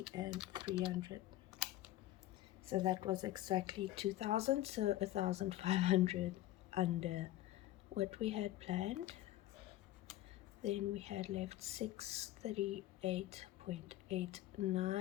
and 300. So that was exactly 2,000, so 1,500 under what we had planned. Then we had left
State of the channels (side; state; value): right; quieter; 14.8 dB